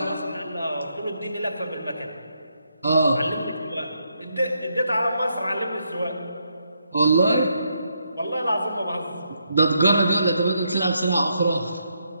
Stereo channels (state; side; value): inverted; both; correlation -0.78